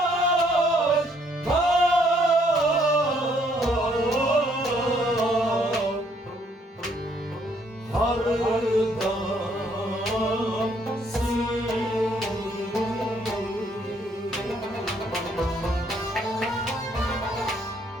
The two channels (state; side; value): normal; both; correlation 0.67